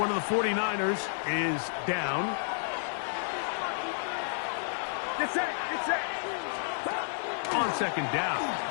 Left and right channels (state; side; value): silent; right; digital silence